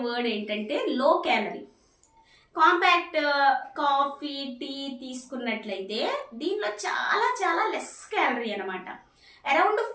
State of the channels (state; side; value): identical; both; correlation 1.00